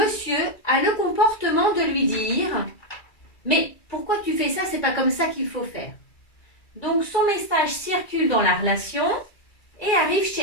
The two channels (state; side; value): late; right; 2.3 ms